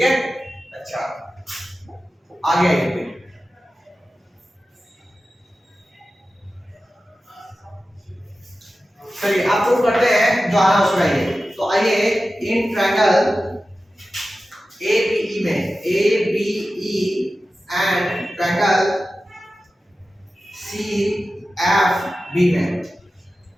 है? अच्छा, आगे आइए। चलिए आप प्रूफ करते हैं जो आना उसमें आइए। तो आइए, इन ट्रायंगल ABE में, ABE एंड ट्रायंगल CFB में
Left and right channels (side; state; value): both; normal; correlation 0.94